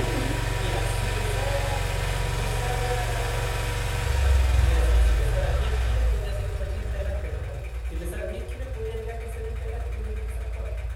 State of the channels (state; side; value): identical; both; correlation 1.00